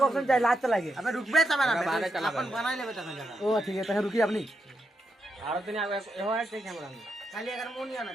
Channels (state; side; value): normal; both; correlation 0.83